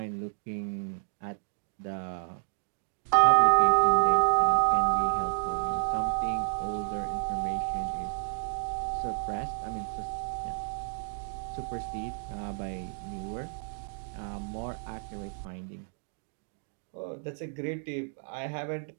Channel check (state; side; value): silent; left; 57 dB below the other